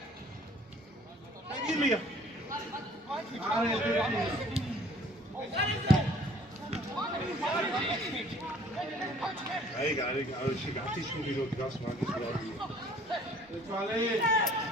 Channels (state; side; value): normal; both; correlation 0.55